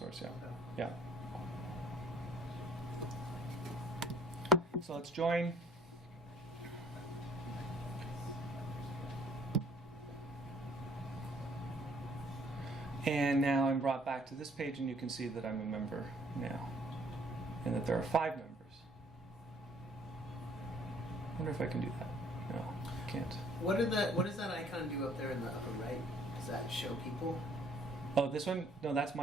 Yeah, Okay. yeah. So let's join. And now I'm brought back to this page, and you can see that I'm a member now, and that there are 5 members. I wonder if I can do that. No, I can't. What does that icon do up there in the upper right? Does that show people? Oh, this one? No, that's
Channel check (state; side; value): normal; both; correlation 0.59